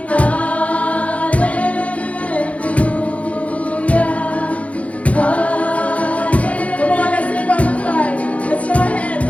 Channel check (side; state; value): right; late; 0.065 ms